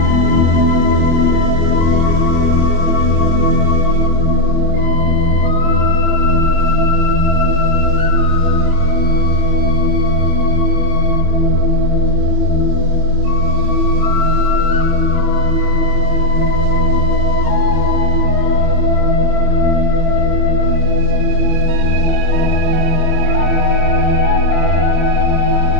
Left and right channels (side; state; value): left; late; 25 ms